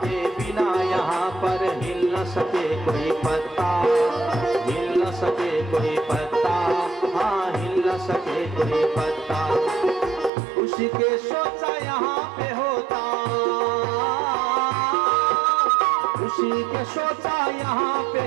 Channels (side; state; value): left; drops out; at 10.3 s